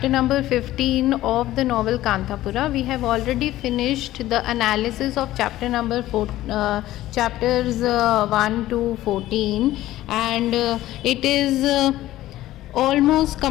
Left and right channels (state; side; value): quieter; right; 15.1 dB